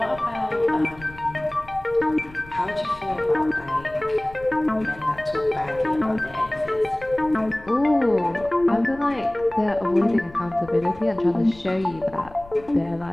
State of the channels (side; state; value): left; noise; rumble, 20 dB below the sound